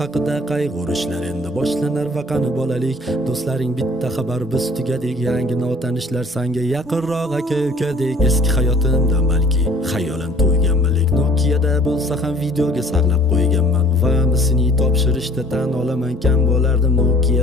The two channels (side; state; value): both; normal; correlation 0.52